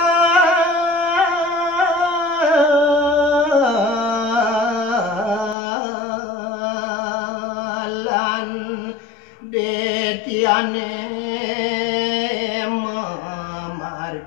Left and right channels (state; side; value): drops out; right; at 5.6 s